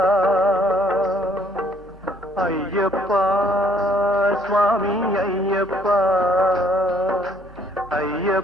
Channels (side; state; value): both; normal; correlation 0.64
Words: ஐயப்பா சுவாமி ஐயப்பா